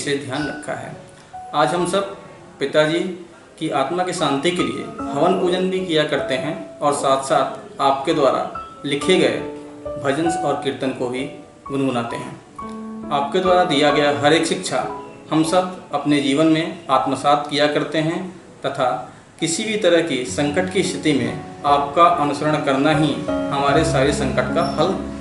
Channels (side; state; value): both; identical; correlation 1.00